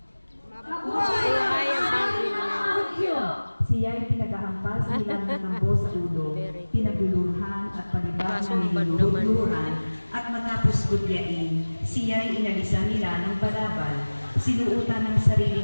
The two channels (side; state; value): both; inverted; correlation -1.00